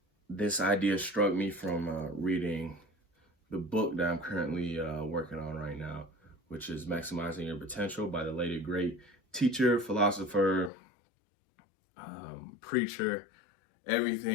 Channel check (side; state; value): right; drops out; at 10.7 s